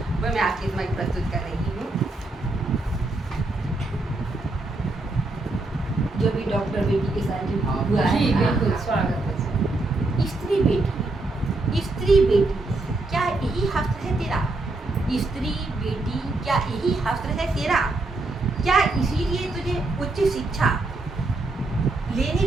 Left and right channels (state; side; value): quieter; left; 3.1 dB